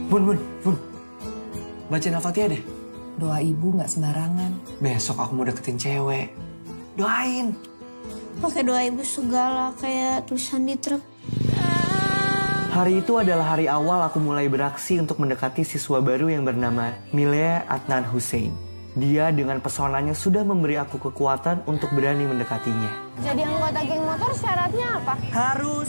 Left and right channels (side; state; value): both; inverted; correlation -1.00